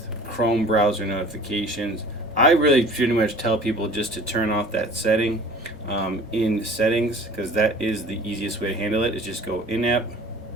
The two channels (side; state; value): left; noise; hum, 23 dB below the sound